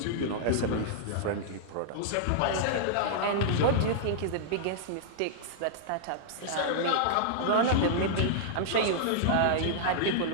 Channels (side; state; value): both; different; correlation -0.02